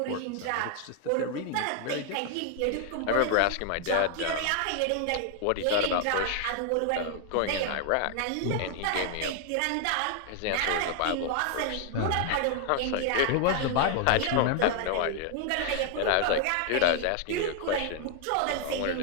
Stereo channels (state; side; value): different; both; correlation 0.00